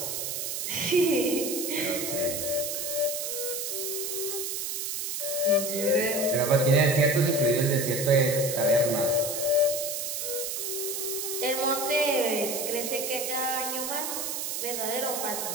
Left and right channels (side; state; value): right; noise; hiss, 3 dB below the sound